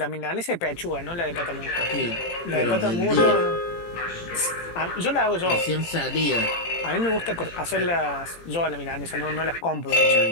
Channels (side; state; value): right; late; 18 ms